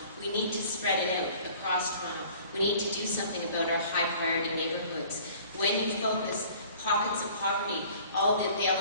We need to spread it out across Toronto. We need to do something about our high priority neighborhoods. When you focus pockets of poverty, all the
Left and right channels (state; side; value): inverted; both; correlation -0.50